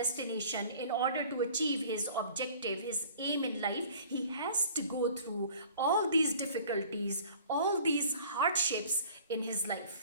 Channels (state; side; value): inverted; both; correlation -0.49